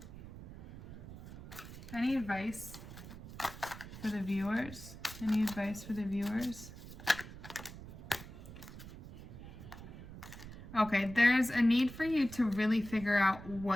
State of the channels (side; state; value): right; noise; rumble, 13 dB below the sound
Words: Any advice for the viewers? Any advice for the viewers? Okay, there's a need for you to really figure out